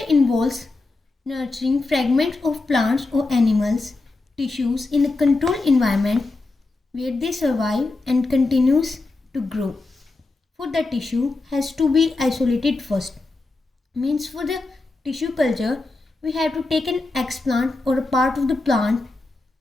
involves nurturing fragments of plants or animals tissues in a controlled environment where they survive and continues to grow. For the tissue has to be isolated first. Means for the tissue culture we have to take an explant or a part of the plant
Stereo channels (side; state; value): right; quieter; 3.3 dB